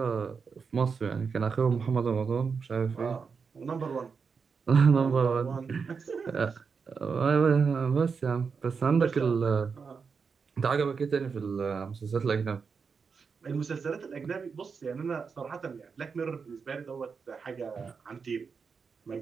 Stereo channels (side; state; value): left; quieter; 5.5 dB